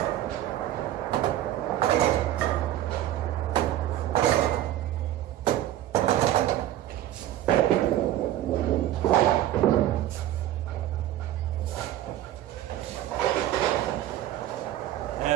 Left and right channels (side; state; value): left; quieter; 13.2 dB